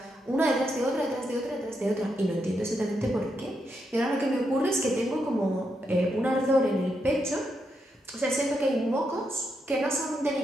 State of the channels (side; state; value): both; normal; correlation 0.82